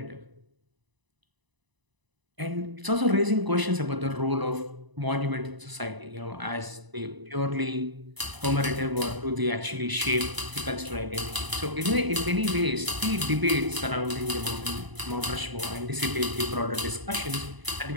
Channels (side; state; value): left; late; 1.0 ms